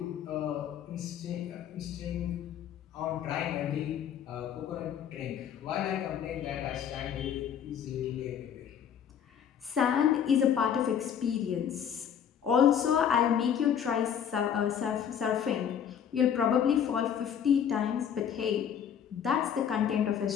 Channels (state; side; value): quieter; right; 8.6 dB